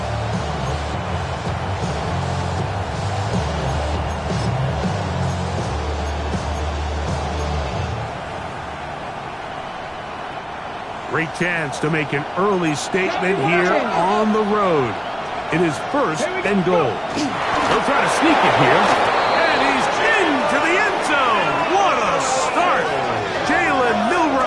Great chance to make an early statement here on the road. It is first and goal. He'll try to sneak it here. And he's into the end zone. What a start. Jalen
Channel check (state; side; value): identical; both; correlation 1.00